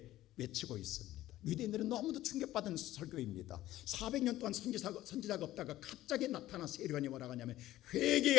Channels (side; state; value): right; quieter; 14.9 dB